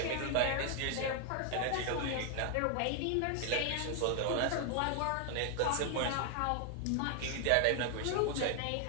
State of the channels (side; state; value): both; different; correlation 0.00